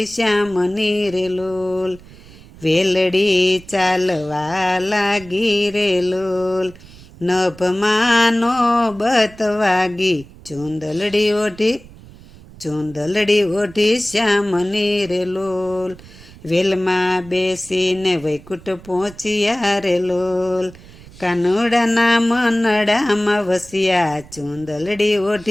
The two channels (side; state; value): right; noise; rumble, 20 dB below the sound